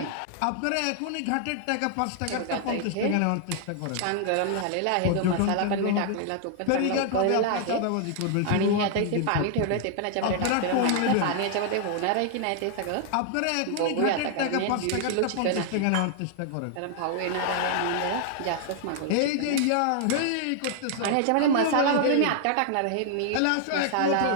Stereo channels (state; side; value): different; both; correlation 0.00